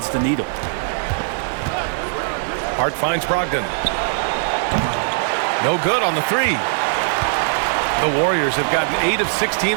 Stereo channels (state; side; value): silent; left; digital silence